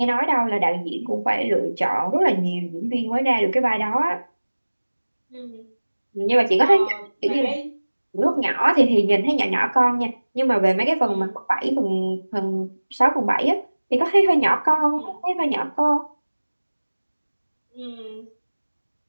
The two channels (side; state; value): both; inverted; correlation -1.00